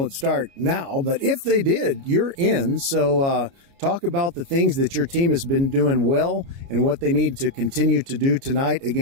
start now, but if they did, you're in. So talk about the things that your team has been doing well and what they need to continue to do tonight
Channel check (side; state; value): left; late; 29 ms